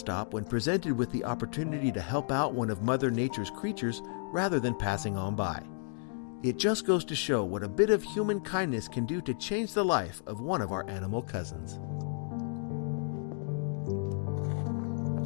when presented with the opportunity to help out one of Mother Nature's creatures rather than passing on by. It just goes to show what a bit of human kindness can do to change the life of one of our animal cousins.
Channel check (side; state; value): right; silent; digital silence